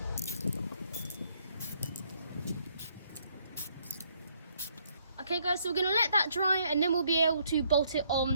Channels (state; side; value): inverted; both; correlation -0.69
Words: Okay guys, so we're going to let that dry and then we'll be able to bolt it